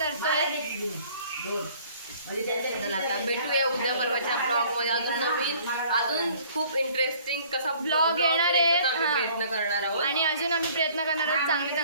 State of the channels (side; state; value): both; inverted; correlation -0.55